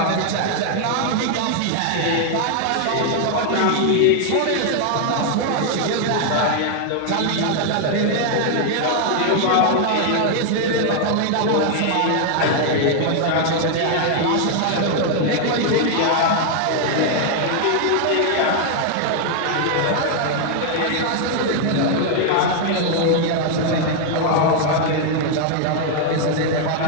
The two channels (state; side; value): different; both; correlation 0.00